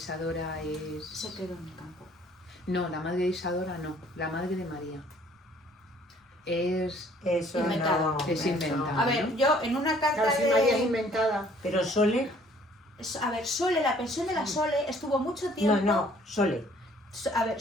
es... Se quedó en el campo. No, la madre de Isadora no, la madre de María. Es Eso Inventado. no. Es eso inventado. no. A ver, yo en una carta Claro, si de... María es inventada. Pero Sole, A ver, Sole, la pensión de la Sole estuvo mucho tiempo... no, Sole. A ver,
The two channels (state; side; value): normal; both; correlation 0.58